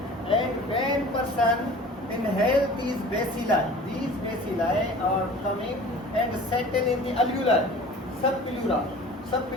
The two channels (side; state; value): both; normal; correlation 0.43